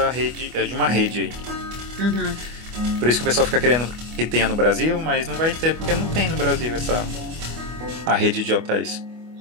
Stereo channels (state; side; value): late; left; 25 ms